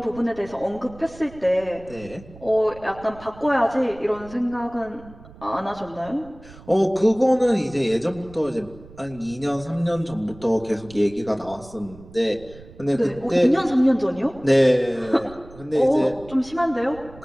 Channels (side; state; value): right; noise; rumble, 20 dB below the sound